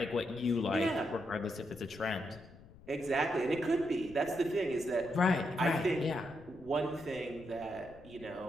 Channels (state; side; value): noise; left; rumble, 21 dB below the sound